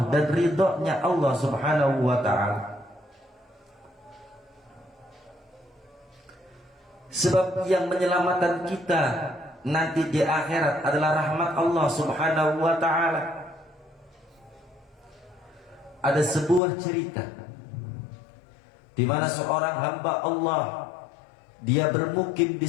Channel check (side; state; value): right; drops out; at 16.6 s